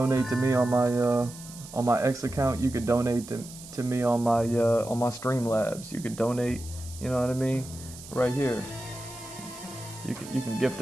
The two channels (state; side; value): noise; right; hiss, 16 dB below the sound